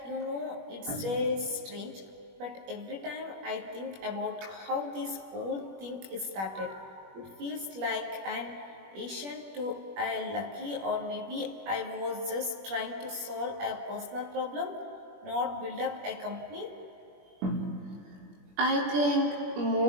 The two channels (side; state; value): left; late; 21 ms